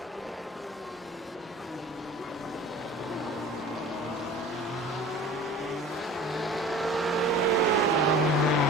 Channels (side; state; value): both; normal; correlation 0.42